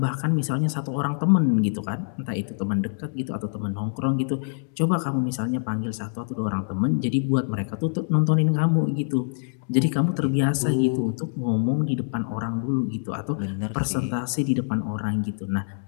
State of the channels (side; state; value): right; silent; digital silence